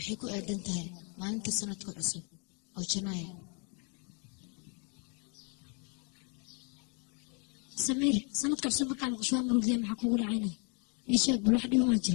ku aadan tahay maalinta sanadka cusub oo Janaayo سمير سندك عصب مركا مقشوها مروق ذي محكو قول عينه يشاك بالواحد يوم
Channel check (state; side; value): quieter; right; 37.2 dB